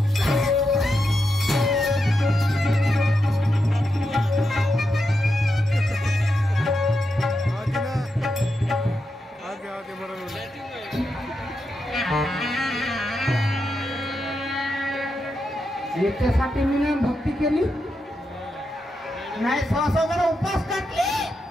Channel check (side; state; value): both; normal; correlation 0.86